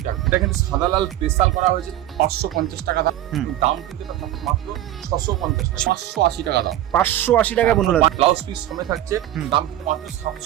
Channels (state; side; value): quieter; left; 13.3 dB